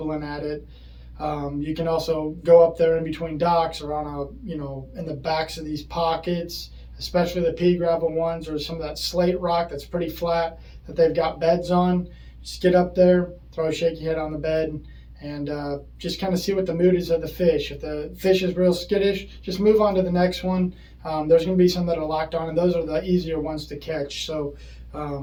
at it. You can also go up there in between docks or on in the backs of these pockets, especially the pea gravel ones or some of that slate rock that's pretty flat that they've got beds on. Just get up there, throw a shaky head on the bed, and just kind of see what the mood is of the fish. If the fish is real skittish, just move on to the next one. There's going to be some that are locked on, and those are the easier ones to catch. So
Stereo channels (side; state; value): both; identical; correlation 1.00